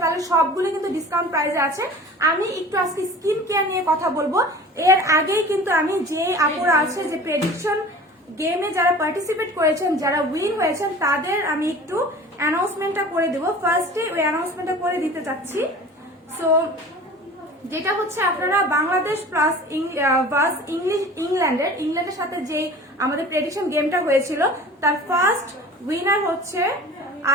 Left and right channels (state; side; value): normal; both; correlation 0.41